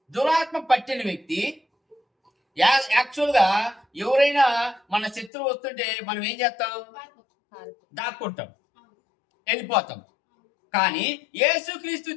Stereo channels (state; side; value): drops out; right; at 5.3 s